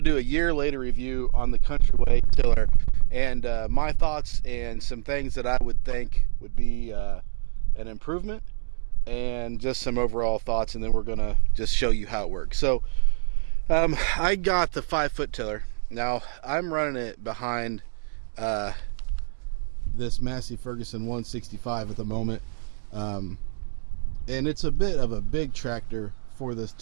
to do a year later review on the Country Way tiller and my thoughts and some things that I would think would be an improvement and just some overall thoughts, and then we're gonna just show you how it works. So I got the 5-foot tiller. Now I'm running it behind this Massey Ferguson 165 at the moment, and it's a bit of a big tractor for this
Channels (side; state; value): left; silent; digital silence